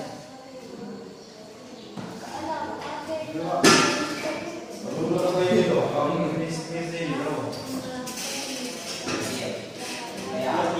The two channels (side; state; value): both; identical; correlation 1.00